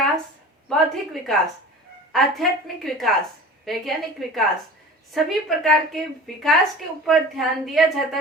बौद्धिक विकास, आध्यात्मिक विकास, वैज्ञानिक विकास, सभी प्रकार के विकास के ऊपर ध्यान दिया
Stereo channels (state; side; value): normal; both; correlation 0.39